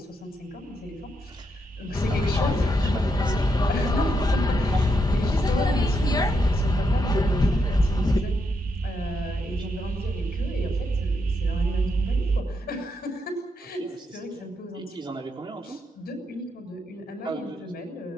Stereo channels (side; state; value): both; normal; correlation 0.81